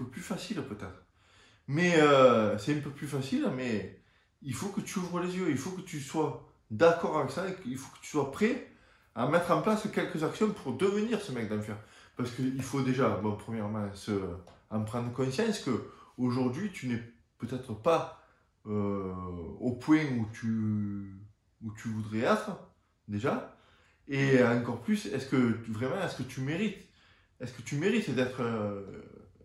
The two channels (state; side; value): identical; both; correlation 1.00